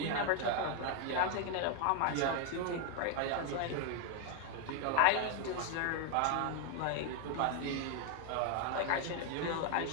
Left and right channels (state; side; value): different; both; correlation 0.01